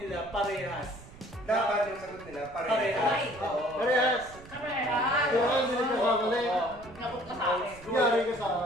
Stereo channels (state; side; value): noise; right; rumble, 19 dB below the sound